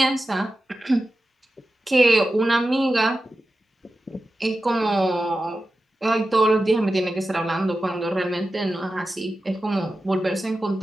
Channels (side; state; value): both; normal; correlation 0.93